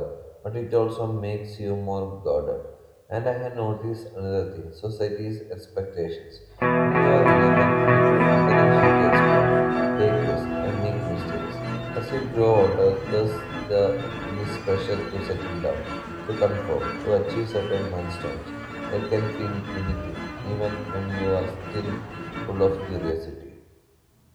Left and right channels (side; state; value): both; identical; correlation 1.00